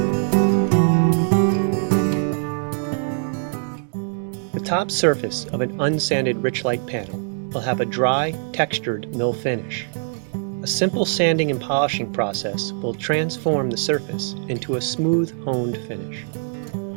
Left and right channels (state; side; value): silent; left; digital silence